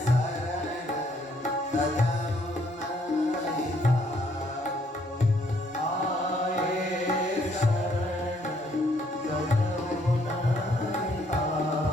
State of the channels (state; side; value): normal; both; correlation 0.68